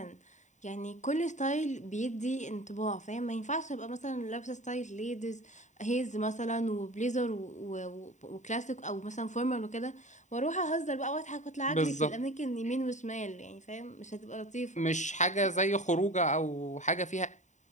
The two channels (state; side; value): late; right; 0.35 ms